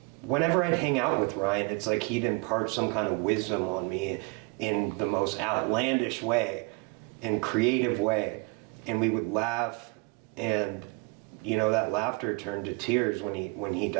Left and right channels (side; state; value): left; quieter; 28.2 dB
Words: whenever I'd hang out with Ryan, it's like he'd impart some kind of wisdom on me in the most outlandish way, in creative way, and we would laugh, and that laughter turned to tears when he